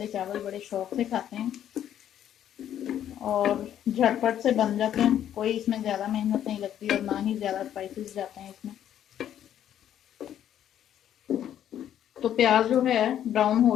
चावल बड़े शौक़ से खाते हैं और झटपट से बन जाते हैं। कोई इसमें ज़्यादा मेहनत नहीं लगती और ना ही ज़्यादा स्पाइसेस जाते हैं इसमें। तो प्याज जो है ब्राउन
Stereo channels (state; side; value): quieter; right; 10.6 dB